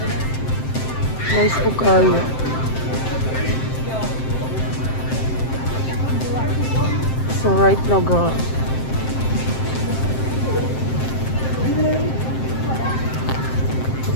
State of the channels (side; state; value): right; late; 7.7 ms